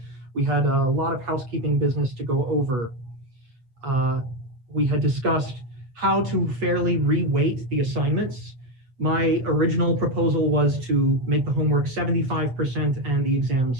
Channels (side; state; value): left; late; 7.9 ms